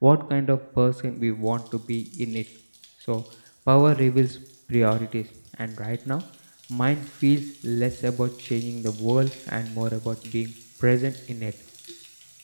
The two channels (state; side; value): inverted; both; correlation -1.00